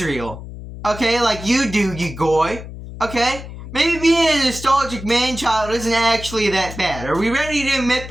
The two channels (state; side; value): noise; left; hum, 12 dB below the sound